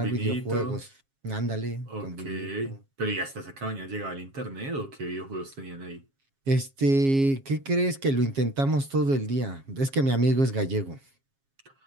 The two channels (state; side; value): late; left; 7.3 ms